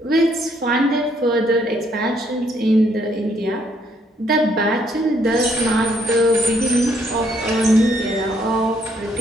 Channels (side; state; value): both; normal; correlation 0.70